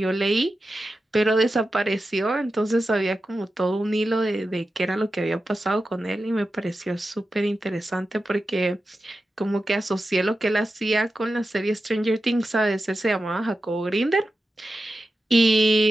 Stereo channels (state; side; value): normal; both; correlation 0.91